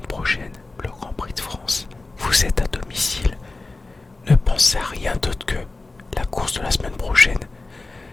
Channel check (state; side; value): quieter; right; 3.3 dB